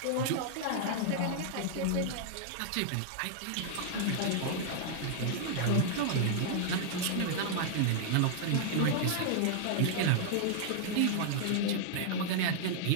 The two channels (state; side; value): different; both; correlation -0.01